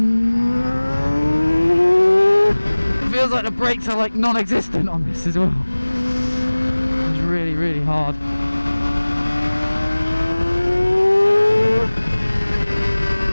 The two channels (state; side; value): inverted; both; correlation -1.00